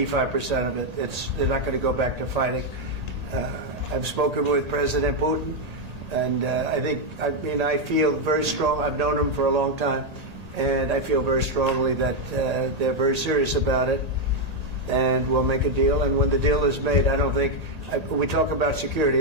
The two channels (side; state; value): left; late; 1.8 ms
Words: of it. They're not going to go back to fighting. I've spoken with President Putin, and I feel very strong. I've known him for a long time, and I feel very strongly that they're very serious about it. And we'll make a deal. And when the deal is made, I don't think we talk about